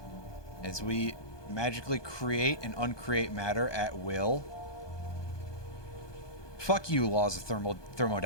As we magically create and uncreate matter at will. Fuck you, laws of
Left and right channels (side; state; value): right; late; 1.2 ms